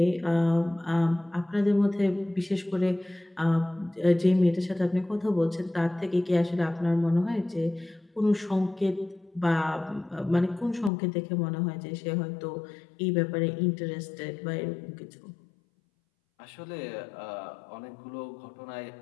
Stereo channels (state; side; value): drops out; right; at 10.9 s